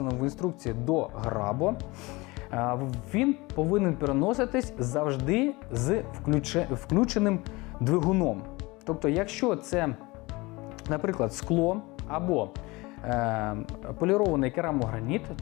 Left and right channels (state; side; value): quieter; right; 23.2 dB